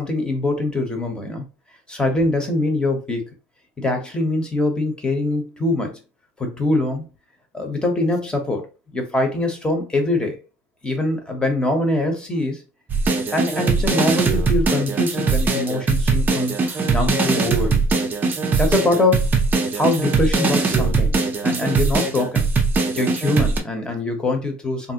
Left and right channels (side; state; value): both; normal; correlation 0.60